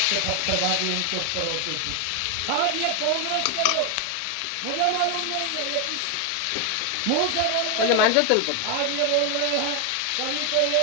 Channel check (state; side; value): different; both; correlation 0.00